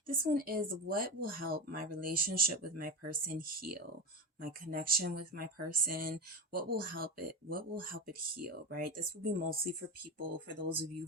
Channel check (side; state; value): both; normal; correlation 0.22